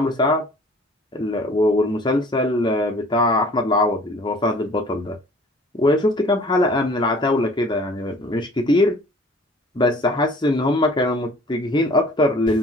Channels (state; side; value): normal; both; correlation 0.50